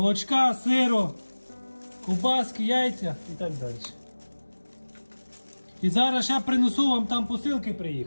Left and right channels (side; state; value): both; inverted; correlation -1.00